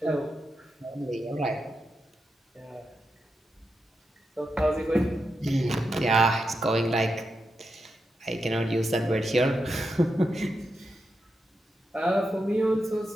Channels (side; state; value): both; normal; correlation 0.86